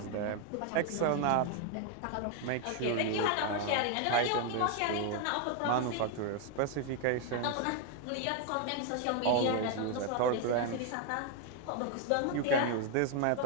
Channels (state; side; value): different; both; correlation 0.01